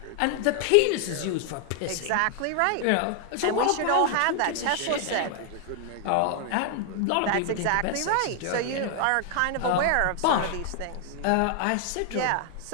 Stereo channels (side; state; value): both; different; correlation 0.00